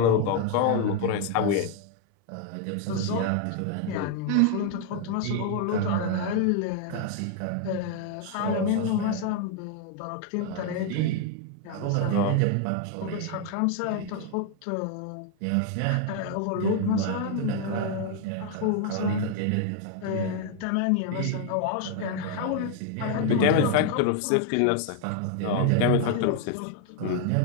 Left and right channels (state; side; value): different; both; correlation 0.00